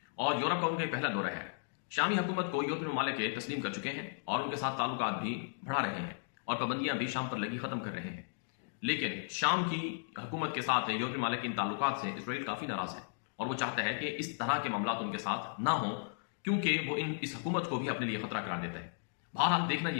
اور یورپ کا ان کا پہلا دورہ ہے۔ شامی حکومت کو یورپی ممالک تسلیم کر چکے ہیں اور ان کے ساتھ تعلقات بھی بڑھا رہے ہیں اور پابندیاں بھی شام پر لگی ختم کر رہے ہیں، لیکن شام کی حکومت کے ساتھ یورپی ممالک ان تعلقات سے اسرائیل کافی ناراض ہے اور وہ چاہتا ہے کہ اس طرح کے معاملات ان کے ساتھ نہ ہوں، کیونکہ وہ اس حکومت کو بھی اپنے لیے خطرہ قرار دیتا ہے۔ بہرحال دیکھنا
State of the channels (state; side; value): silent; right; digital silence